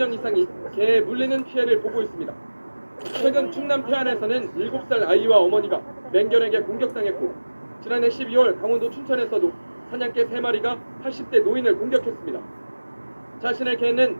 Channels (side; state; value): both; inverted; correlation -1.00